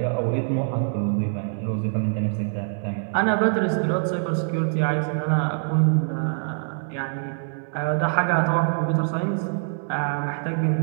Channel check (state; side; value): silent; left; digital silence